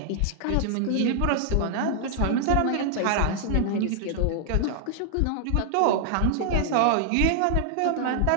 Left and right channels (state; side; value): different; both; correlation 0.00